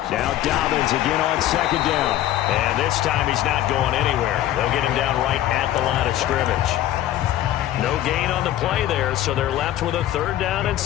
Now Dobbins again on 2nd down. And this time he's not going anywhere. They'll get him down right at the line of scrimmage. No gain on the play there, so they're left with a 3rd down and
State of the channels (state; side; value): quieter; right; 13.1 dB